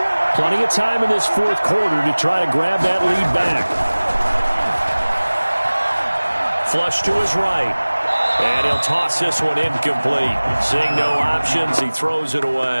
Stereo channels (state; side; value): inverted; both; correlation -1.00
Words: plenty of time in this 4th quarter to try to grab that lead back. Flush to his right. And he'll toss this one incomplete. Seeing no options, he throws it